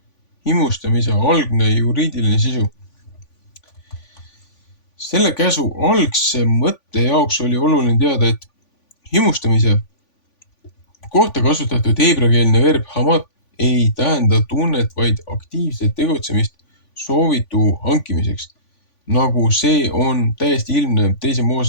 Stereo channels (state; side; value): late; right; 3.5 ms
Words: himustamise algne juriidiline sisu? Selle käsu algse mõtte jaoks oli oluline teada, et himustamise kohta kasutatud heebreakeelne verb hamat ei tähenda tunnet, vaid aktiivset tegutsemist soovitu hankimiseks. Nagu see on täiesti ilmne 2.